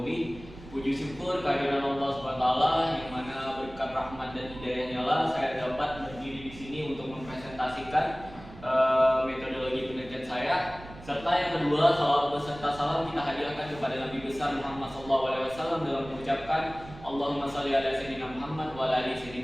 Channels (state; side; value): noise; right; rumble, 17 dB below the sound